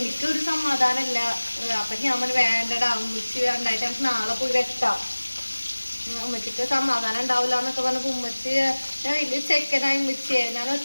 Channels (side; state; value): both; inverted; correlation -1.00